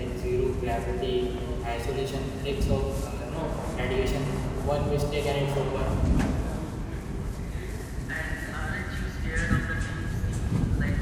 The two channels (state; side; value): identical; both; correlation 1.00